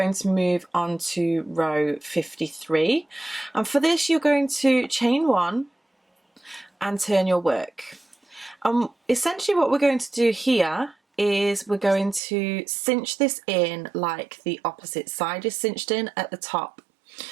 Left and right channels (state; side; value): drops out; left; at 12.2 s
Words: to move on to row 53. And for this, you're going to chain 1 and turn your work. Essentially what we're going to do here is we're going to cinch this in like the opposite side is cinched in at the top.